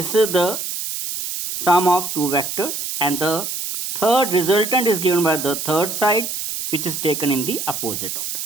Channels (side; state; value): right; noise; hiss, 5 dB below the sound